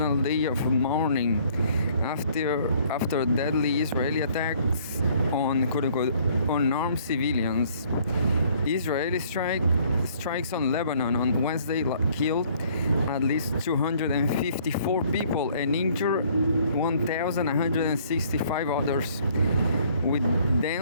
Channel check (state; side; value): inverted; both; correlation -0.61